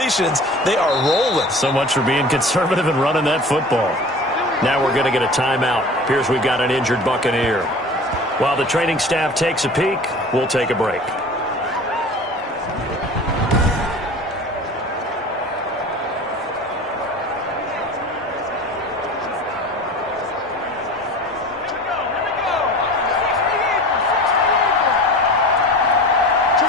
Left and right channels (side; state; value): both; normal; correlation 0.39